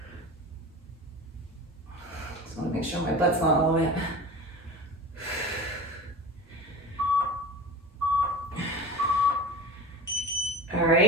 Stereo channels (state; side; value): normal; both; correlation 0.31